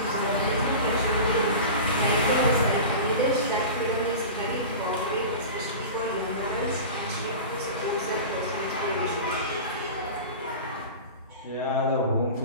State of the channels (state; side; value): inverted; both; correlation -0.32